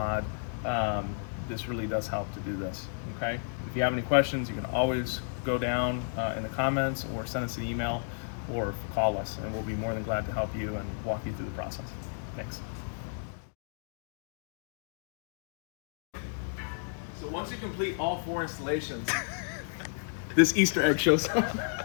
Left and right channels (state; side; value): silent; right; digital silence